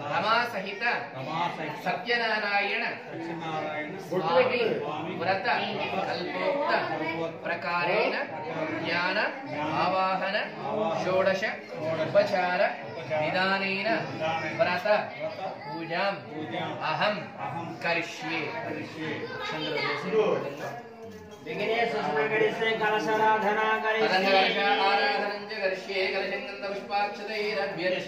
रमा सहित सत्यनारायण स्वामी व्रत कल्पोक्त प्रकारेण ज्ञान आवाहन षोडश उपचार निदानेन व्रत पूजां अहं करिष्ये विघ्नेश सुमंगलस्य कलशाराधना करिष्ये आराधनं च करिष्ये कलशं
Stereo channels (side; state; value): both; identical; correlation 1.00